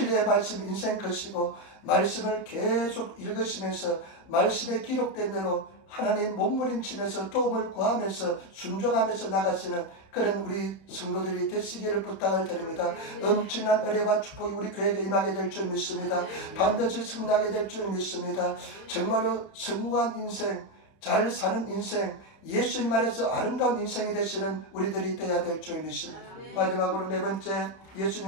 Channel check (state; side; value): late; right; 31 ms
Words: 말씀 인생 것이고 말씀을 계속 읽으시면서 말씀에 기록된 대로 하나님 몸부림치면서 도움을 구하면서 순종하면서 나가시는 그런 우리 성도들이 되시기를 부탁을 드립니다. 엄청난 은혜와 축복이 우리 교회에 임하게 될 줄 믿습니다. 반드시 승리하게 될 줄 믿습니다. 정말로 성공한 인생, 잘 사는 인생, 예수님 안에서 아름다운 인생이 되시는 우리들이 되어야 될 줄 믿습니다. 마지막으로 네 번째,